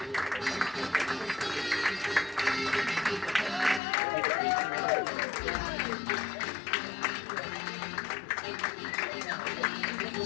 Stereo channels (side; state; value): right; drops out; at 3.8 s